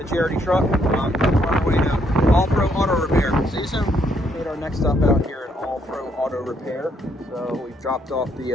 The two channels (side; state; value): both; normal; correlation 0.71